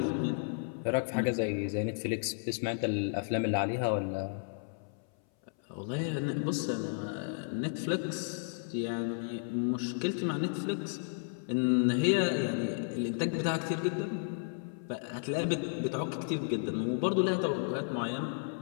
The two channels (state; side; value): silent; right; 56 dB below the other